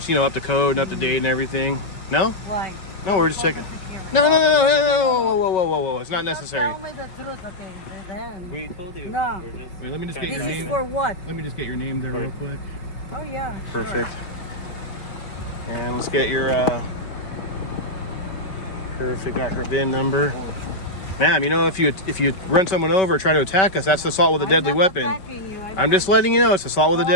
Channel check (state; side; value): late; right; 5.3 ms